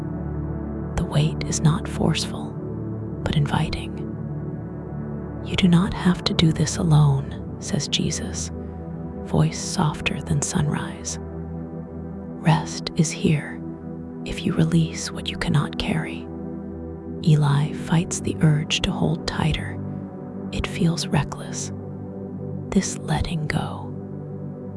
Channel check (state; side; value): identical; both; correlation 1.00